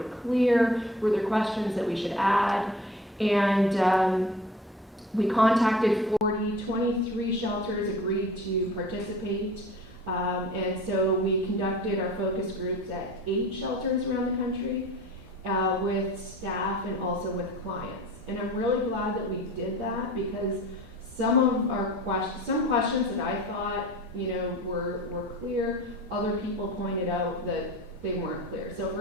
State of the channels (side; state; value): both; normal; correlation 0.41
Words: clear, were there questions that we should add. And we contacted 23 shelters agreed to participate. And so we conducted our focus groups at 8 shelters around the country with staff and also with clients. And I'm really glad that we did that because some questions that I thought, were clear, other people pointed out that they weren't clear. So